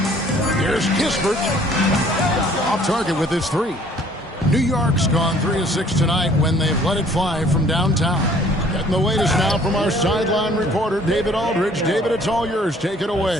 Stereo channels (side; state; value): both; normal; correlation 0.56